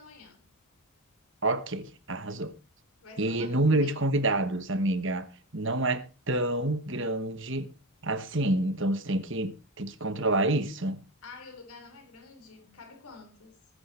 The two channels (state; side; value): normal; both; correlation 0.21